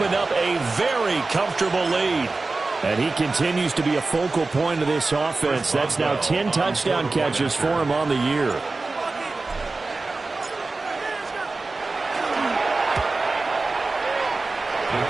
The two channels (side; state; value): left; quieter; 3.6 dB